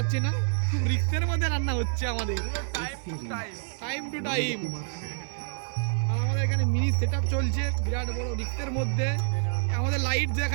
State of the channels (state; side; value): silent; left; 60 dB below the other